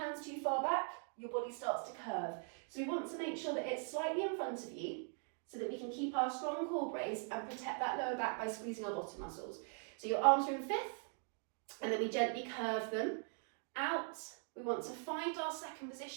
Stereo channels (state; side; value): silent; left; 50 dB below the other